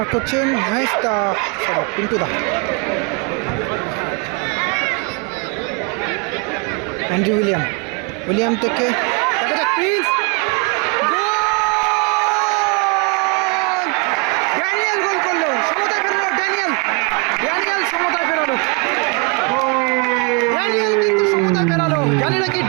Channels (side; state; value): left; quieter; 33.0 dB